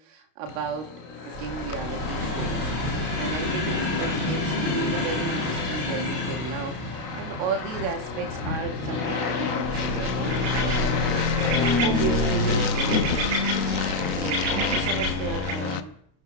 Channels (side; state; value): left; late; 32 ms